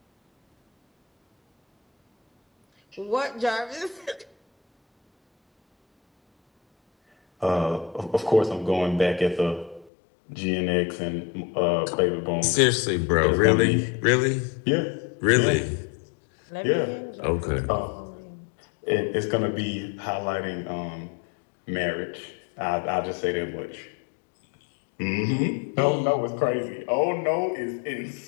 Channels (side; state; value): right; drops out; at 9.9 s